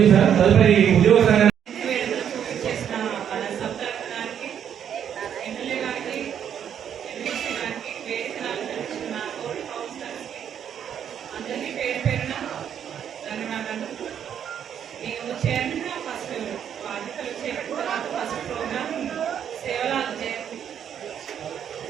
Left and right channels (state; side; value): quieter; left; 8.9 dB